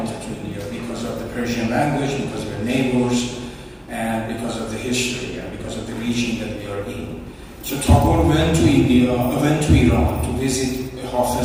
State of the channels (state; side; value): identical; both; correlation 1.00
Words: to India because of the Persian language, because we're neighbors, and because of the history, and because of the region that we are in. So Tagore went to Iran to visit